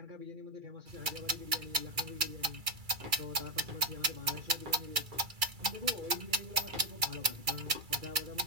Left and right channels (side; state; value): left; late; 2.3 ms